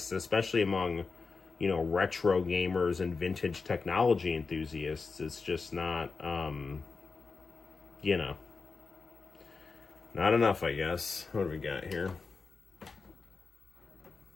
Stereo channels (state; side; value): quieter; right; 4.6 dB